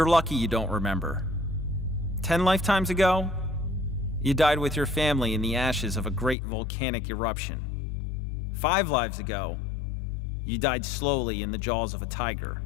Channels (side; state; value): right; drops out; at 6.4 s